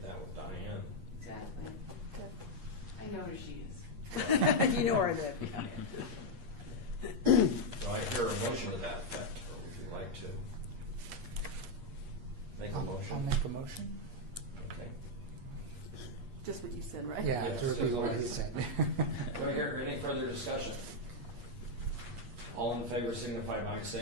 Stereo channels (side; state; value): left; late; 8.5 ms